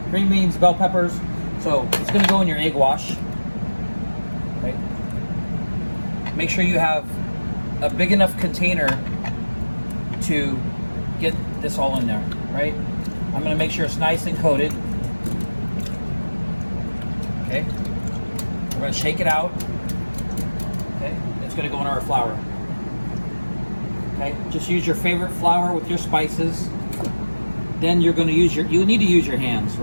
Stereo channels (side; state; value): both; inverted; correlation -1.00